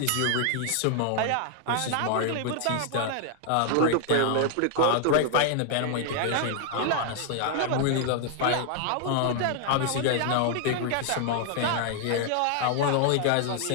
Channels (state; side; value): different; both; correlation 0.00